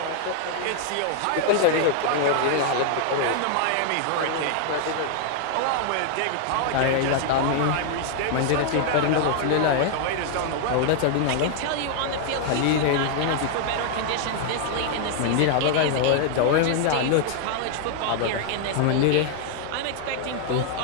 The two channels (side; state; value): both; different; correlation 0.00